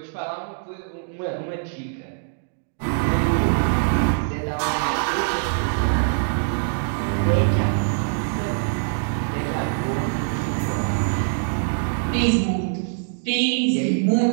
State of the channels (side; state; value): left; silent; digital silence